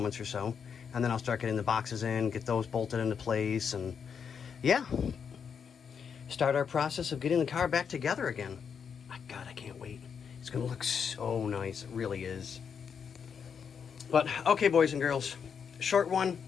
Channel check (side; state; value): right; quieter; 6.8 dB